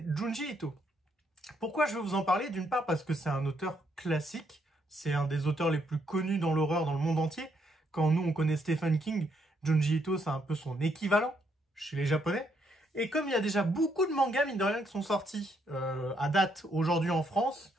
Junji Ito. Pourquoi je vais vous en parler? D'une part parce que c'est un auteur classique, c'est un des auteurs les plus connus dans l'horreur dans le monde entier. Quand nous, on connaît Stephen King, Junji Ito, c'est un peu son équivalent chez les Japonais. Et comme il y a déjà beaucoup de mangas, mine de rien, qui sont sortis à date aujourd'hui en France,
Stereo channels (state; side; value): normal; both; correlation 0.74